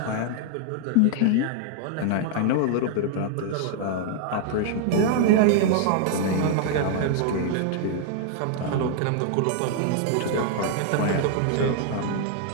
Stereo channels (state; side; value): different; both; correlation 0.00